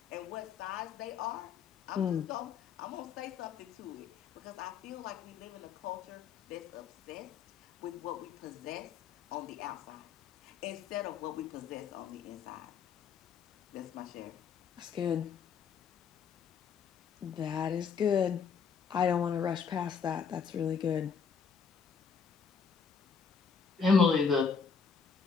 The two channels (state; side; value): quieter; right; 6.2 dB